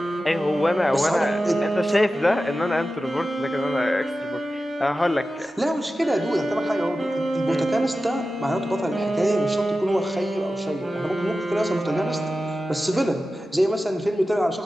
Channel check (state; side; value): normal; both; correlation 0.94